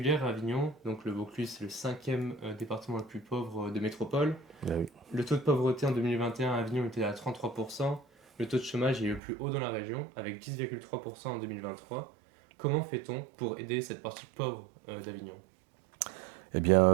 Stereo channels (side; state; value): left; drops out; at 9.2 s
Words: à Avignon. Donc le Vaucluse, c'est le 5e département le plus pauvre de métropole. Ah oui. Le taux de pauvreté en 2021 à Avignon était à 33%. Le taux de chômage est le plus haut dans la région, avec 10,3% en 2023. Comment fait-on pour aider cette partie pauvre d'Avignon? Eh bien,